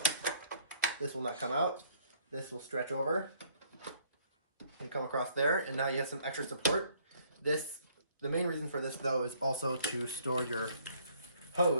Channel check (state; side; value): inverted; both; correlation -0.62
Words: This will not come out. This will stretch over and come across there, and now you have some extra support. The main reason for this though is also to store your